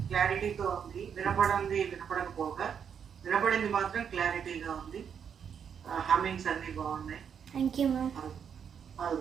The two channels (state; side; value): quieter; left; 7.6 dB